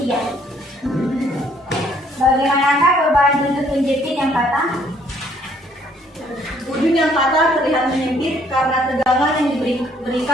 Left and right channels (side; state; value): both; normal; correlation 0.64